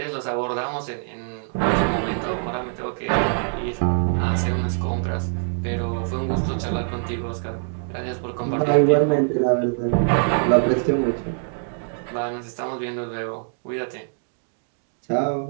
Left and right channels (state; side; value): silent; left; digital silence